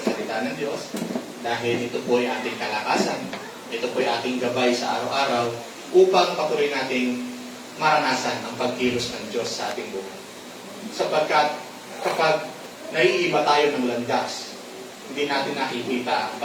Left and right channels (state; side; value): identical; both; correlation 1.00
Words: salita ng Diyos. Dahil ito po ay ating kalakasan. Ito po ay ating gabay sa araw-araw upang patuloy nating maranasan ang pagkilos ng Diyos sa ating buhay. Sapagkat kapag naiiba tayo ng landas, hindi natin nakikita ang